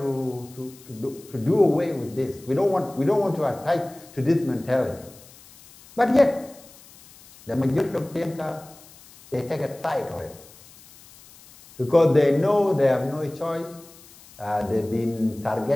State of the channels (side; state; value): left; noise; hiss, 23 dB below the sound